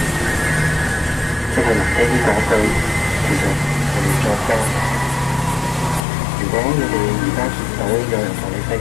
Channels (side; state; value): right; drops out; at 6.0 s